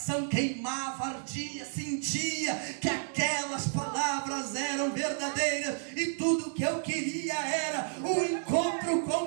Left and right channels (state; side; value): silent; left; digital silence